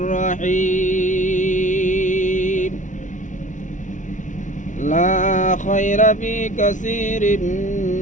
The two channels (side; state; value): right; late; 0.37 ms